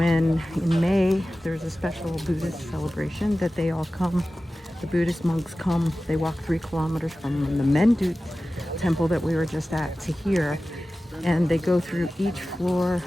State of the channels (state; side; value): normal; both; correlation 0.96